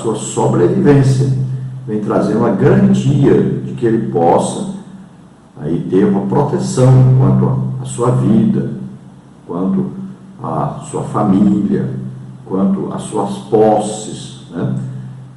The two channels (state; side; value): identical; both; correlation 1.00